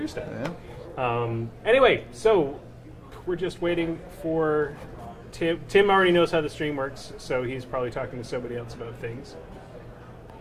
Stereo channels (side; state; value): both; identical; correlation 1.00